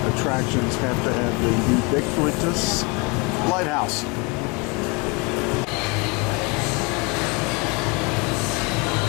attractions have to have the ubiquitous lighthouse.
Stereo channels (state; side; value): quieter; right; 28.6 dB